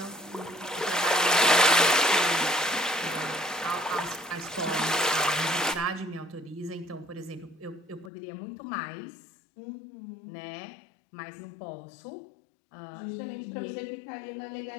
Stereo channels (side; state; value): right; drops out; at 8.1 s